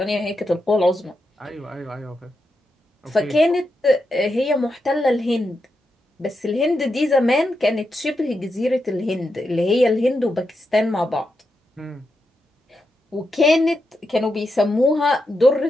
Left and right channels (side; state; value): both; normal; correlation 0.86